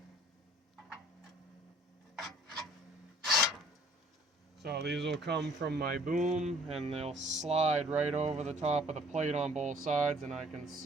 So these will come from my boom and they'll slide right over the top of the plate on both sides, and I can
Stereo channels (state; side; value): normal; both; correlation 0.57